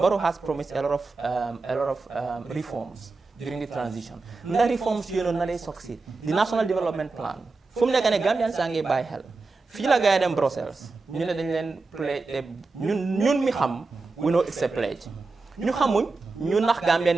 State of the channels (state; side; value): quieter; left; 3.8 dB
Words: has promised a lot of reforms during the transition. The reforms, they succeed. The National Development Plan. From the Gambian sange by hell. Feel like I Brussels. We know it's a pledge. ñu xamuñ ñu nax Gambien